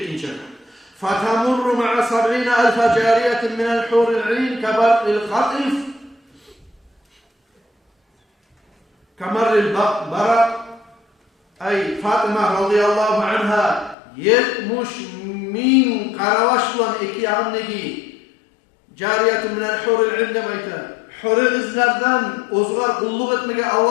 kadar. فَتَمُرُّ مَعَ 70,000 جَارِيَةٍ مِنَ الْحُورِ الْعِينِ كَبَرْءِ الْخَطِفِ Kamaril Barak ay Fatıma radıyallahu anha 70,000 karavaş olan iki yanındaki cariyetun minel huril ilne bayta huril izlerden ozgar kulluk etmeye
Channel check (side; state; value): right; drops out; at 14.0 s